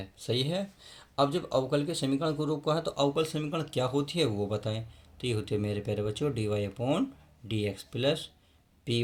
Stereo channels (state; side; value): identical; both; correlation 1.00